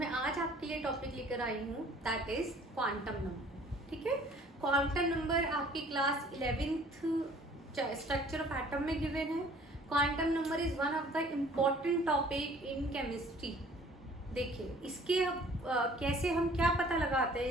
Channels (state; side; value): normal; both; correlation 0.53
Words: आज आपके लिए टॉपिक लेकर आई हूँ दैट इज क्वांटम नंबर। ठीक है, क्वांटम नंबर आपकी class 11th structure of atom में गिवन है। Quantum number is one of the important topic in chemistry. देखिए इसके कैसे हम क्या पता लगाते